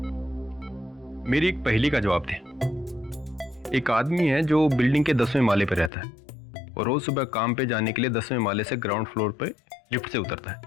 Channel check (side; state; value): right; drops out; at 5.9 s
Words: मेरी एक पहेली का जवाब दे। एक आदमी है जो बिल्डिंग के 10वें माले पर रहता है और रोज सुबह काम पे जाने के लिए 10वें माले से ग्राउंड फ्लोर पे लिफ्ट से उतरता है,